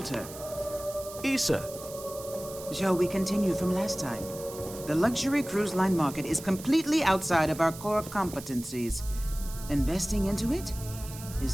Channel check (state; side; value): noise; right; hiss, 14 dB below the sound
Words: Issa. shall we continue from last time? The luxury cruise line market is completely outside of our core competencies. Investing into it